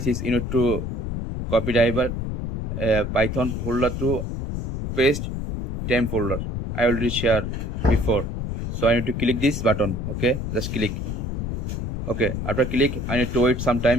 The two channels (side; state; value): left; noise; rumble, 3 dB below the sound